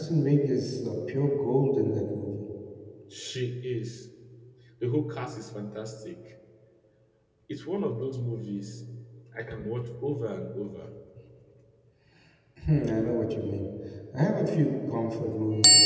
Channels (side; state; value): both; identical; correlation 1.00